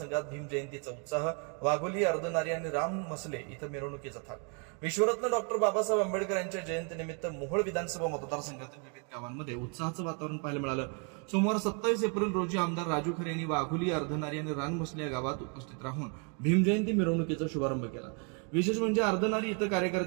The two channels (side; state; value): left; quieter; 37.9 dB